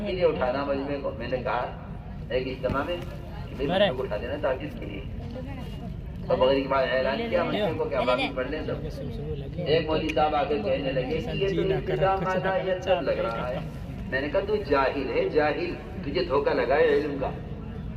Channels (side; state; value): both; identical; correlation 1.00